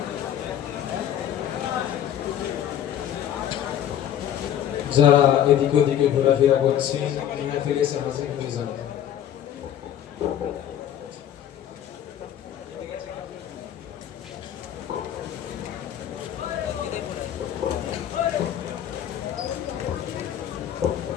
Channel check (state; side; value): quieter; right; 10.4 dB